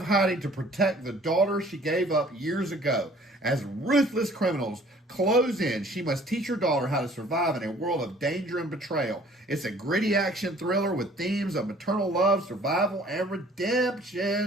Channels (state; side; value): normal; both; correlation 0.54